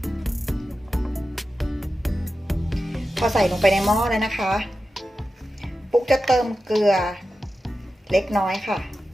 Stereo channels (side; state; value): both; normal; correlation 0.92